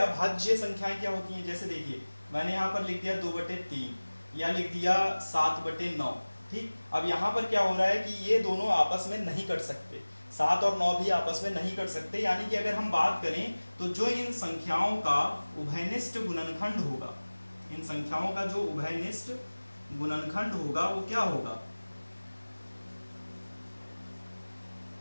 अभाज्य संख्याएं क्या होती हैं, जैसे देखिए मैंने यहाँ पर लिख दिया 2/3 या लिख दिया 7/9। ठीक, अब यहाँ पर क्या हो रहा है कि ये दोनों आपस में नहीं कट सकते, 7 और 9 भी आपस में नहीं कट सकते। यानी कि अगर हम बात करें तो जो इन संख्याओं का उभयनिष्ठ गुणनखंड होगा, इन संख्याओं का जो उभयनिष्ठ गुणनखंड होगा वो क्या होगा,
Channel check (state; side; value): inverted; both; correlation -1.00